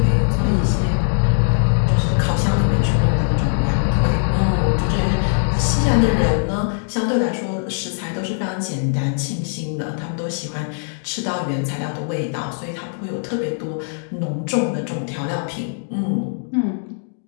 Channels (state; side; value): silent; right; digital silence